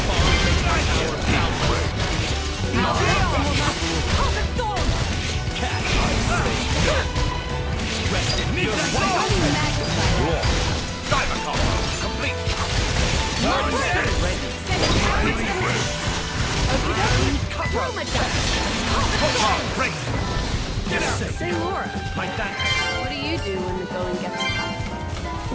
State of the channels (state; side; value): identical; both; correlation 1.00